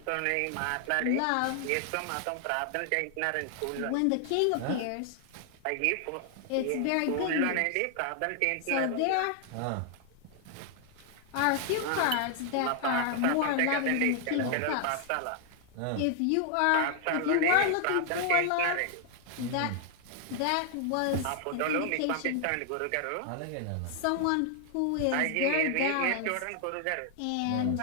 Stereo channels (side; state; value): both; different; correlation 0.00